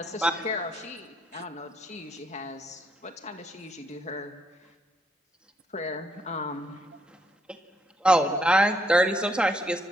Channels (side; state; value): both; normal; correlation 0.73